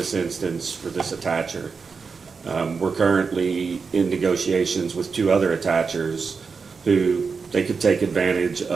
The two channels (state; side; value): quieter; left; 5.1 dB